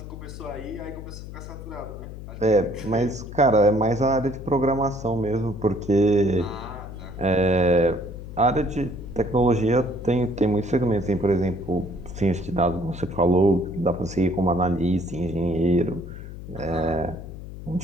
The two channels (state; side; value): noise; left; hum, 11 dB below the sound